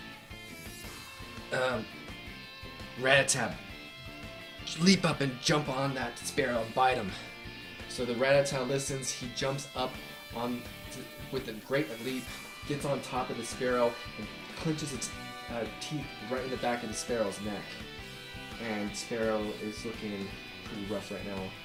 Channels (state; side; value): identical; both; correlation 1.00